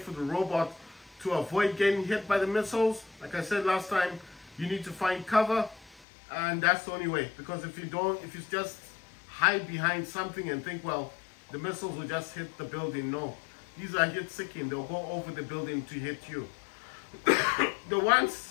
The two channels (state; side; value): drops out; right; at 6.1 s